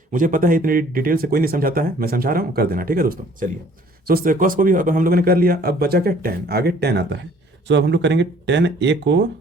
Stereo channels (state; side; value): normal; both; correlation 0.56